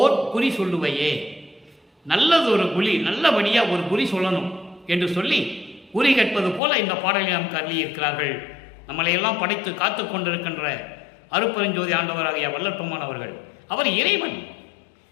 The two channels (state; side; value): drops out; right; at 6.6 s